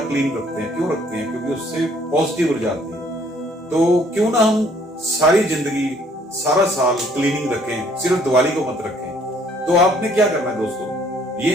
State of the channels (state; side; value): normal; both; correlation 0.62